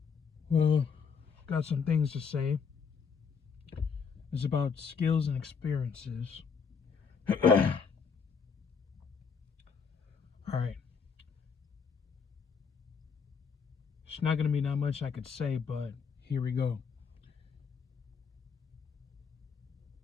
Well, got some things to say. It's about skills and experiences. Alright. It's not gonna be that much I could say, but here we go.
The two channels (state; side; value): quieter; right; 6.0 dB